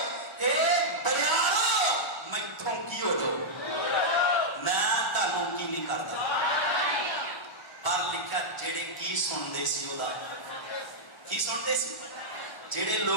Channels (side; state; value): right; late; 1.0 ms